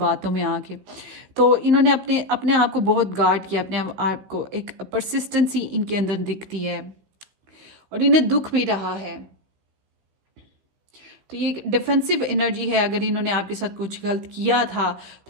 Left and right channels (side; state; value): left; late; 16 ms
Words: में आके। तो इन्होंने अपने अपने आप को बहुत गार्ड किया, अपने आप को, एक परसिस्टेंसी इनके अंदर दिखती है, और इन्हें दुख भी रहा है। तो ये एक डिफेंसिव एनर्जी है। अगर इन्होंने आपके साथ कुछ गलत किया था